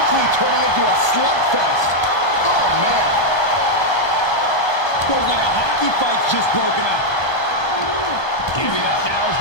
turning into a slugfest. Oh man. Looks like a hockey fight's just broken out. Giving up now is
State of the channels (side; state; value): right; late; 1.2 ms